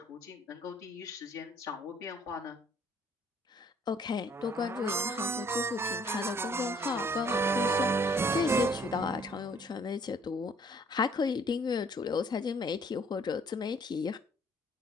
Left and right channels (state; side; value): normal; both; correlation 0.60